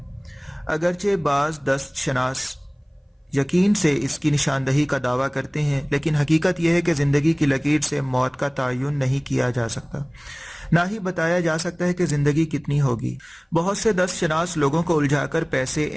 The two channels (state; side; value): identical; both; correlation 1.00